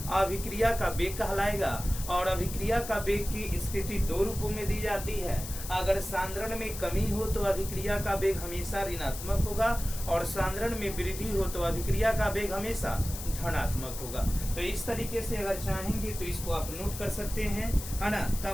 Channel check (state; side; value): noise; left; hiss, 10 dB below the sound